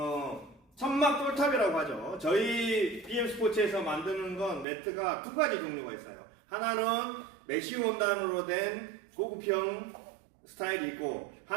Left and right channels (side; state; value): left; drops out; at 4.7 s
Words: 천막 똘탑이라고 하죠. 저희 BM스포츠에서 만드는 건 매트가 두 가지 종류가 있어요. 하나는 메쉬 원단으로 된 고급형 스타일이 있고,